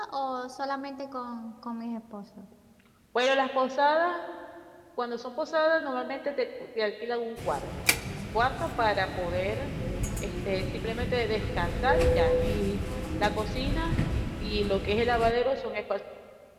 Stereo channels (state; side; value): identical; both; correlation 1.00